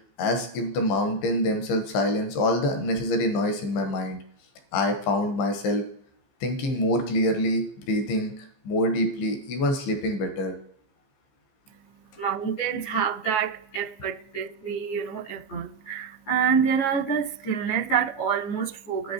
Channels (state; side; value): late; right; 15 ms